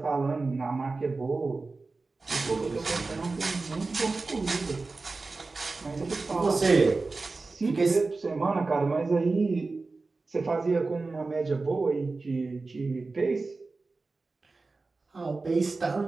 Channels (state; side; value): quieter; left; 3.7 dB